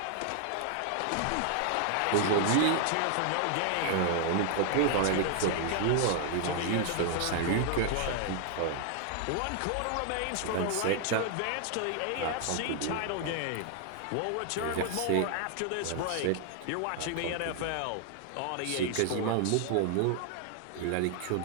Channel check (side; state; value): both; different; correlation 0.00